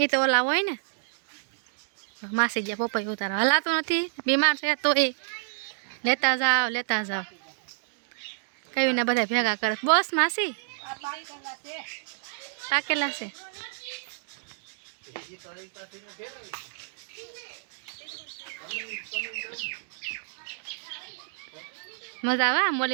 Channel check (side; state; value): left; silent; digital silence